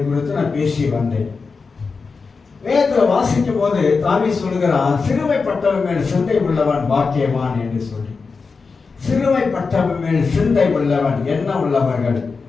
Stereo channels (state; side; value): quieter; right; 4.7 dB